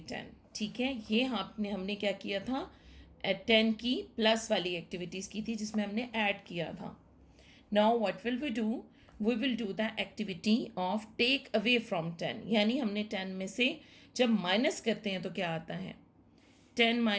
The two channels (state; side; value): identical; both; correlation 1.00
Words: 10। ठीक है, ये हमने क्या किया था, 10 की प्लस वाली एक्टिविटीज़ की थी जिसमें हमने ऐड किया था। Now what will we do, we will do the activity of take away from 10। यानी हमने 10 में से जब माइनस करते हैं तो क्या आता है, 10